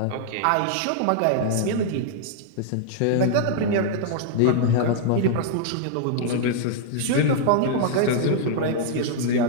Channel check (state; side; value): different; both; correlation -0.01